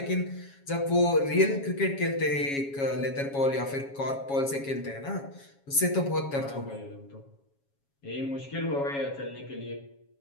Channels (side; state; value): right; late; 7.3 ms